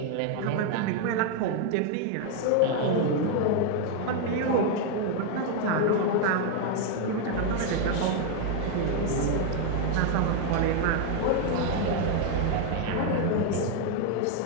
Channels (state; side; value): different; both; correlation 0.01